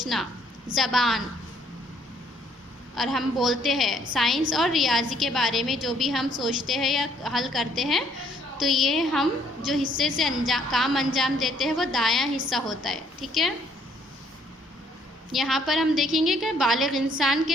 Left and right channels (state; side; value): normal; both; correlation 0.65